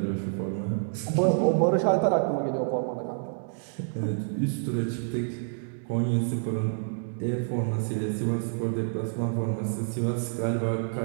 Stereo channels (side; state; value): left; silent; digital silence